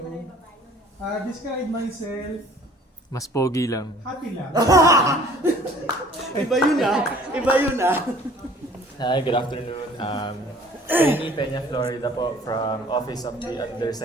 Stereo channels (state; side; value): normal; both; correlation 0.52